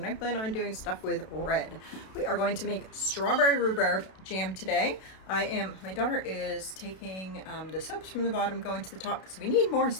I plan on doing stuff with red. We are going to make strawberry rhubarb jam today. My daughter is taking the soaps from the bottom, going to the top because we need more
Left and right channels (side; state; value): right; late; 32 ms